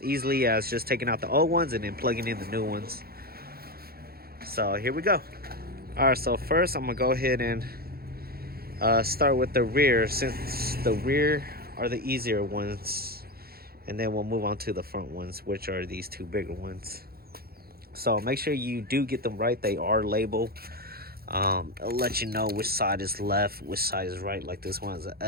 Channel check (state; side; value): late; left; 0.44 ms